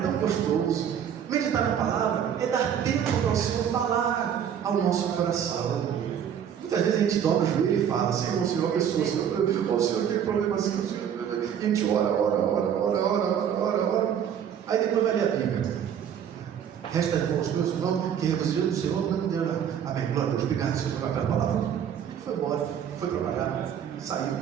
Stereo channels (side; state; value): left; quieter; 8.7 dB